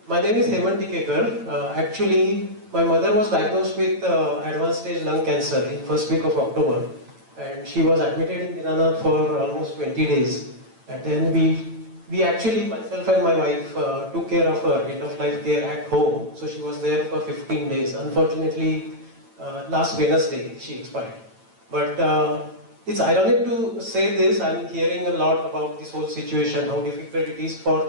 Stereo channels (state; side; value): late; left; 9.0 ms